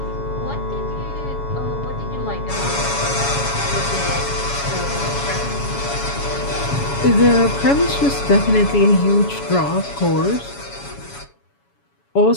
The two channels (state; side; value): late; right; 7.1 ms